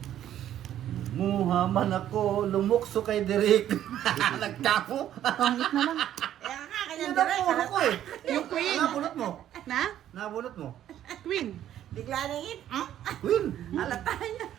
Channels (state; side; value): quieter; left; 11.4 dB